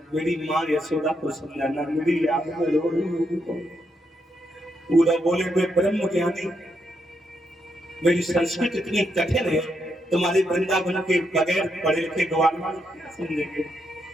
मेरी माँ यशोदा को समझाना, मेरी याद में रो रही हूँ। पूरा बोले मैं ब्रह्म ज्ञानी, मेरी संस्कृत इतनी कठिन है, तुम्हारे वृंदावन के बगैर पढ़े लिखे गवार क्या समझेंगे।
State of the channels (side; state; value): both; normal; correlation 0.80